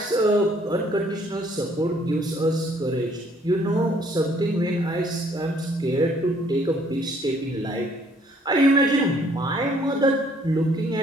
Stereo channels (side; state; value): both; normal; correlation 0.62